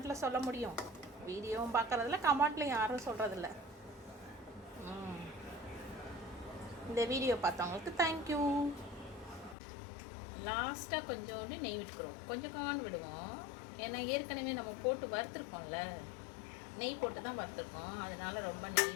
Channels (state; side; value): drops out; right; at 9.6 s